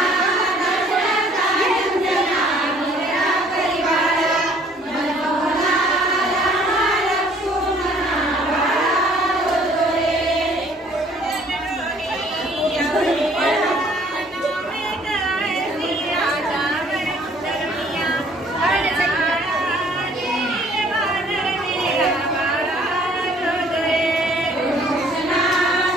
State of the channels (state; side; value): normal; both; correlation 0.58